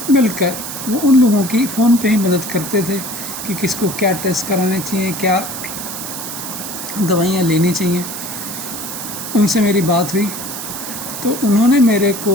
मिलकर वो उन लोगों की फ़ोन पे ही मदद करते थे कि किसको क्या टेस्ट कराने चाहिए, क्या दवाइयाँ लेनी चाहिए। उनसे मेरी बात हुई तो उन्होंने मेरे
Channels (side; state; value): right; noise; hiss, 7 dB below the sound